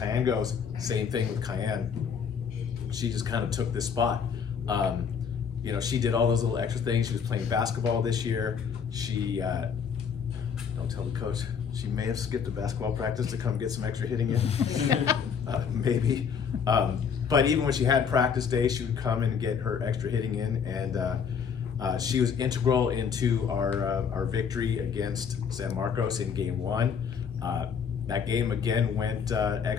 goes, same thing with Cayenne. She just kind of took this spot. You know, she did all those little extra things. She was playing basketball this year. She, don't tell the coach, she may have skipped a basketball practice to come get some extra hitting in. Maybe. But even when she had practice days, she would come and get her extra hitting in, and she was integral into our victory against San Marcos in game 1. That game again went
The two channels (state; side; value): quieter; right; 6.8 dB